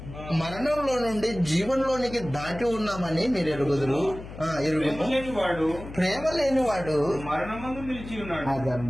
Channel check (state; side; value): noise; left; hum, 13 dB below the sound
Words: మరణంలో నుండి జీవంలోనికి దాటి ఉన్నామని మీరు ఎరుగుదురు. ప్రేమ లేనివాడు మరణమందు నిలిచి ఉన్నాడు.